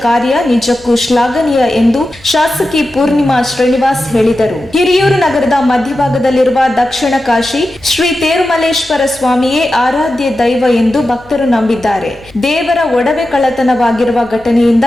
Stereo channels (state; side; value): noise; left; hum, 26 dB below the sound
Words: ಕಾರ್ಯ ನಿಜಕ್ಕೂ ಶ್ಲಾಘನೀಯ ಎಂದು ಶಾಸಕಿ ಪೂರ್ಣಿಮಾ ಶ್ರೀನಿವಾಸ್ ಹೇಳಿದರು. ಹಿರಿಯೂರು ನಗರದ ಮಧ್ಯಭಾಗದಲ್ಲಿರುವ ದಕ್ಷಿಣ ಕಾಶಿ ಶ್ರೀ ತೇರುಮಲ್ಲೇಶ್ವರ ಸ್ವಾಮಿಯೇ ಆರಾಧ್ಯ ದೈವ ಎಂದು ಭಕ್ತರು ನಂಬಿದ್ದಾರೆ. ದೇವರ ಒಡವೆ ಕಳ್ಳತನವಾಗಿರುವ ಘಟನೆಯಿಂದ